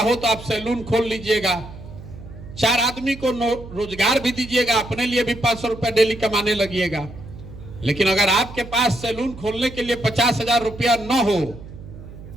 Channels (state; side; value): noise; right; hum, 15 dB below the sound